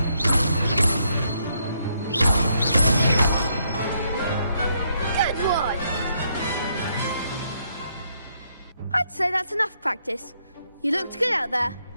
Good one. I'd say that's enough practice. You looked good out there.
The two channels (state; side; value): inverted; both; correlation -0.74